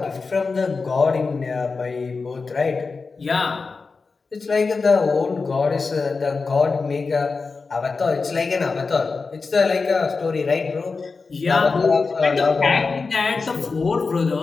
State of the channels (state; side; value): quieter; right; 4.4 dB